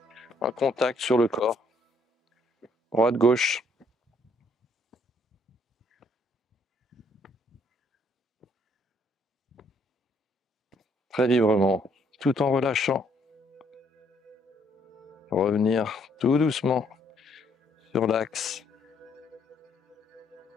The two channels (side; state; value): both; normal; correlation 0.68